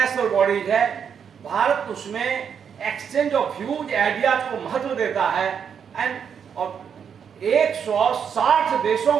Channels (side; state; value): left; quieter; 7.4 dB